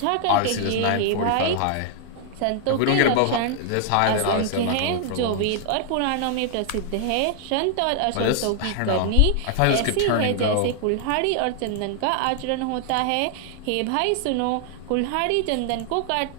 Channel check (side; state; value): both; different; correlation 0.00